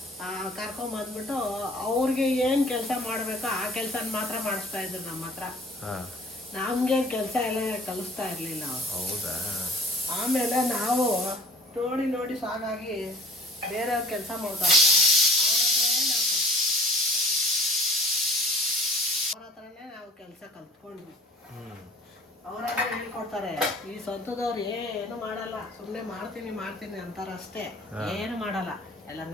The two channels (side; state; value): both; normal; correlation 0.49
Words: ಕರ್ಕೊಂಡ್ ಬಂದ್ಬಿಟ್ಟು ಅವ್ರಿಗೆ ಏನ್ ಕೆಲಸ ಮಾಡ್ಬೇಕೋ ಆ ಕೆಲಸ ಮಾತ್ರ ಮಾಡಿಸ್ತಾ ಇದ್ರು ನಮ್ಮ ಹತ್ರ. ನಮ್ಗೆ ಕೆಲಸ ಎಲ್ಲ ಕಲಿಸ್ತಾ ಇರ್ಲಿಲ್ಲ ಅವ್ರು. ಹೌದಾ? ಆಮೇಲೆ ನಾವು ನೋಡಿ ನೋಡಿ ಸಾಕಾಗಿ ಬೇರೆಯವ್ರ ಕೆಲಸ ಮಾಡ್ತಾರಲ್ಲ, ಅವ್ರ ಹತ್ರನೇ ನಾವು ಕೆಲಸ ಕಲ್ತ್ಕೊಂಡ್ವಿ. ಅವರಾದ್ರೆ ಹೇಳ್ಕೊಡ್ತಾರೆ. ಈ ಸ್ವಂತದವ್ರು ಏನು ಮಾಡಲ್ಲ, ಸುಮ್ಮನೆ ಮಾಡ್ತೀನಿ ಅಂತಾರಷ್ಟೇ, ಏನು ಮಾಡಲ್ಲ, ಎಲ್ಲ